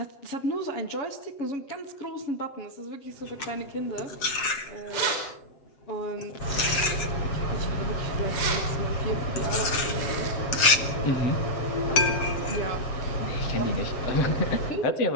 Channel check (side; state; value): right; late; 7.6 ms